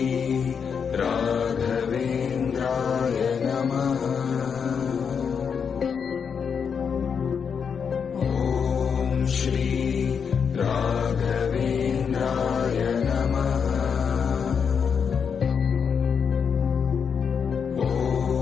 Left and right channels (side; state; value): right; quieter; 6.6 dB